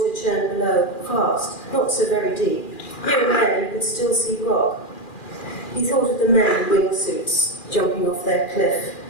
churned below, fast, not so very deep. Here and there you could still see rock. He thought of the men in wingsuits jumping off their cliff.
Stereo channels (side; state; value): right; late; 2.4 ms